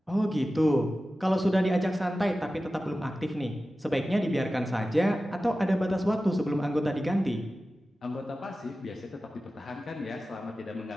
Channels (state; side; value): normal; both; correlation 0.95